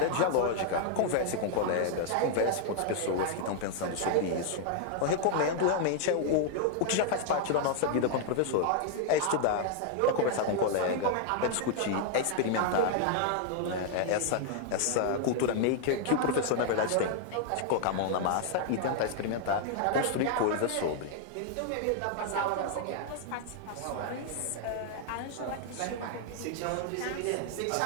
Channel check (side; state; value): both; different; correlation 0.00